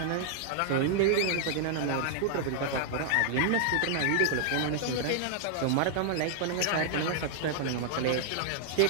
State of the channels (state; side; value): different; both; correlation -0.01